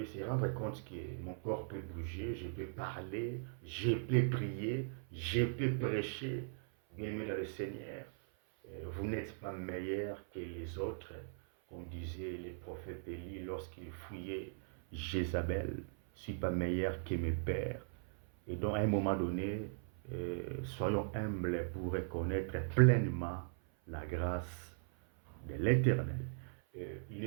se rendre compte que mon corps peut bouger, je peux parler, je peux prier, je peux prêcher, bien aimé le Seigneur, vous n'êtes pas meilleur que les autres, comme disaient les prophètes Élie lorsqu'ils fouillaient Jézabel. Je ne suis pas meilleur que mes pères. Et donc, à un moment donné, soyons humbles pour reconnaître pleinement la grâce de l'Éternel. Il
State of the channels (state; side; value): silent; left; 52 dB below the other